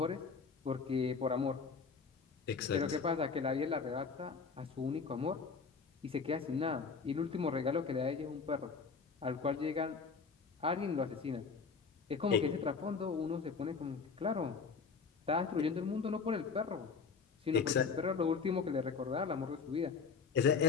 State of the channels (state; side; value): quieter; right; 5.2 dB